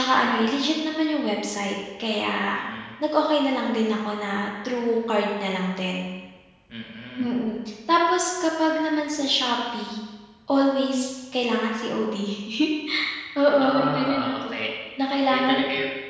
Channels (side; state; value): both; identical; correlation 1.00